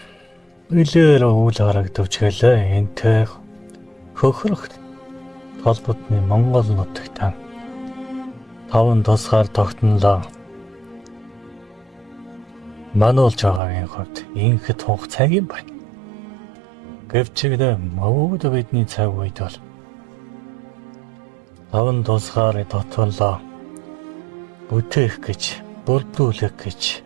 Илээр үл харагдавч гэлээ энтэй хөхрөх толботны Монгол нутагтаа таван тусгаар тогтнолоо. Мануулж байгаагийн хувьд инхэд хугацааг юм байна. Гэвчигдээ мөвд бидний цаг үед бол таван тусгаар тогтнолоо бүтээх гэж, бүрдүүлэх гэж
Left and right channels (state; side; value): drops out; left; at 13.6 s